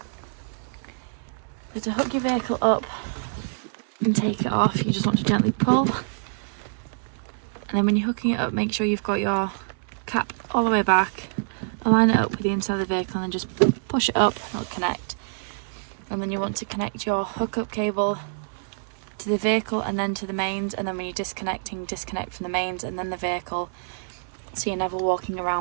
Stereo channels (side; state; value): left; silent; digital silence